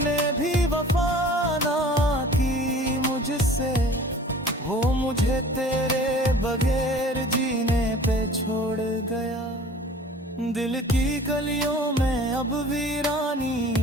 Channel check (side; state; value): both; normal; correlation 0.46